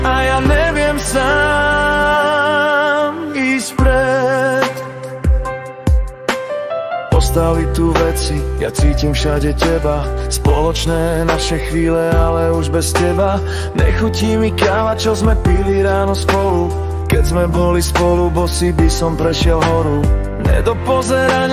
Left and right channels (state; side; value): identical; both; correlation 1.00